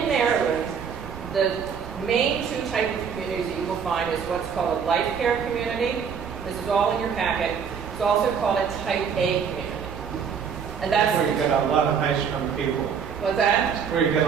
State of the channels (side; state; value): left; quieter; 6.9 dB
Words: Maryland, the main two types of communities that you will find is what's called a life care community. This is all in your packet. It's also called a type A community. And that's where you get a lot of high-strung people. What's that? Where you get